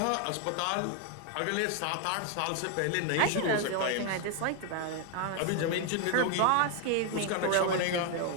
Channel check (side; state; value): both; different; correlation 0.00